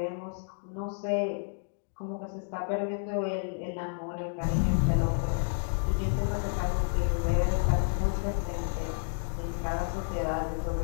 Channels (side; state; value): right; silent; digital silence